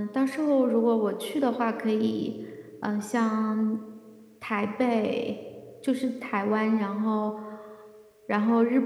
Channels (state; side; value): identical; both; correlation 1.00